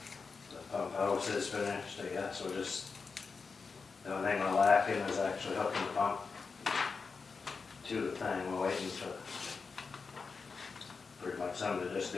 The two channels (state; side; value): quieter; right; 4.9 dB